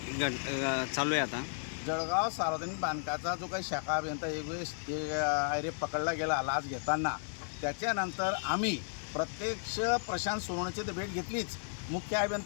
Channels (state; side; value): silent; right; 55 dB below the other